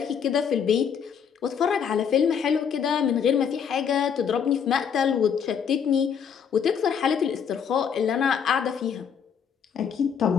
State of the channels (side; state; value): right; quieter; 7.4 dB